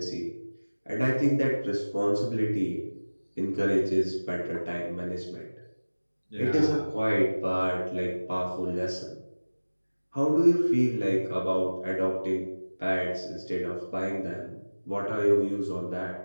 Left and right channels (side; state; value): both; inverted; correlation -1.00